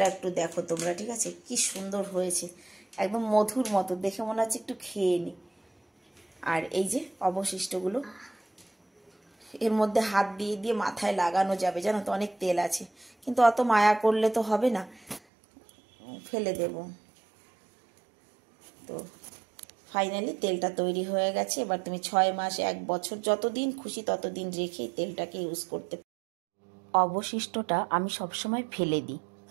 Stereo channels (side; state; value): left; drops out; at 15.2 s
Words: একটু দেখো তোমরা, ঠিক আছে, কি সুন্দর হয়েছে, একদম মধুর মতো, দেখে মনে হচ্ছে একটু খেয়ে নি। আর এই যে অবশিষ্টগুলো এর মধ্যে হাত দিয়ে দিয়ে মাথায় লাগানো যাবে, জানো তো, অনেক তেল আছে, কিন্তু অত মায়া করলে তো হবে না, ফেলে দেব। তো ফাইনালি তেলটা তৈরি হয়ে গেছে। এবার তুমি 6 মাস 1 বছর যতদিন খুশি ততদিন রেখে তেলটাকে ইউজ করতে। অবশিষ্টটা আমি সবসময় ফেলে দিই,